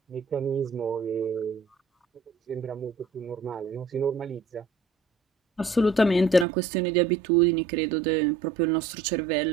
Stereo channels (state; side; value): drops out; left; at 6.5 s